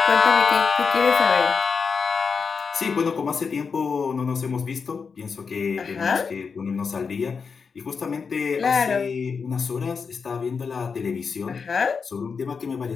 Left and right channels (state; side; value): quieter; right; 5.6 dB